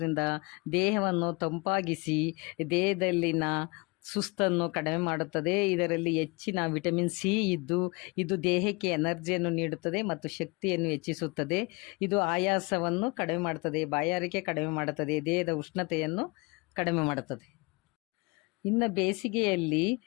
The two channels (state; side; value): quieter; right; 27.5 dB